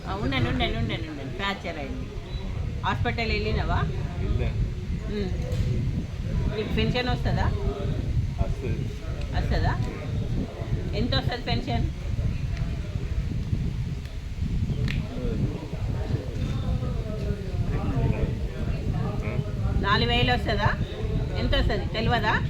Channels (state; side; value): identical; both; correlation 1.00